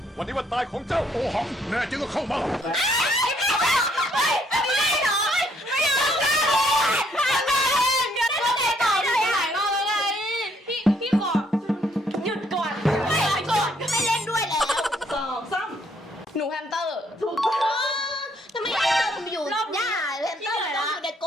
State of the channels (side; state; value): both; normal; correlation 0.68